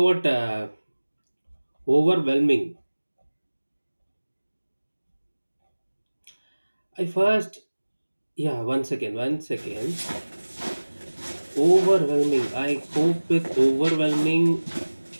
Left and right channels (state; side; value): inverted; both; correlation -1.00